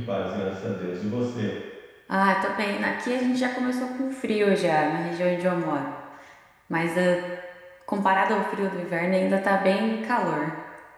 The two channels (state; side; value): identical; both; correlation 1.00